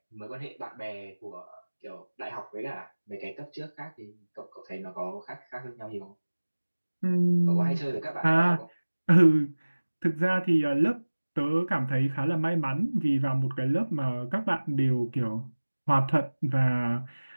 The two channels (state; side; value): inverted; both; correlation -1.00